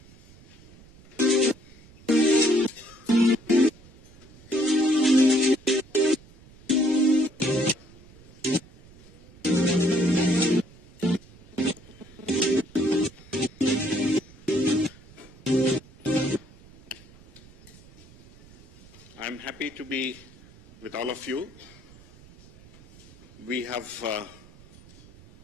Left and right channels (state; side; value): noise; right; rumble, 23 dB below the sound